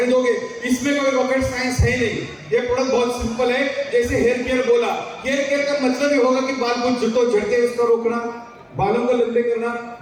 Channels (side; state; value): both; identical; correlation 1.00